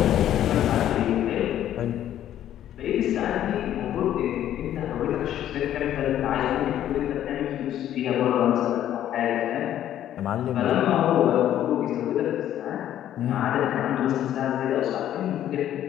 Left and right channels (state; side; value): quieter; right; 11.6 dB